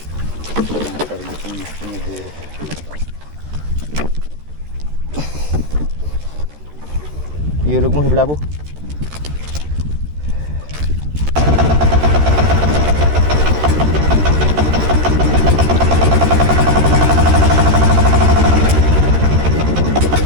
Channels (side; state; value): left; late; 13 ms